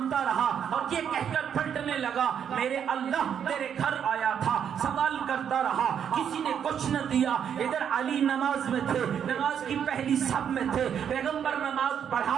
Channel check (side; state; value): left; quieter; 8.3 dB